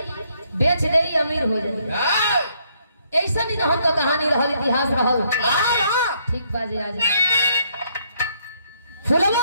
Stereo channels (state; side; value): inverted; both; correlation -0.70